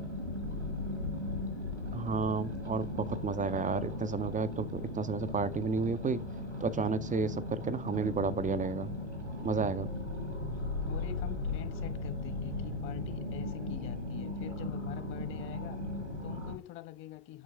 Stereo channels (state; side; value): normal; both; correlation 0.15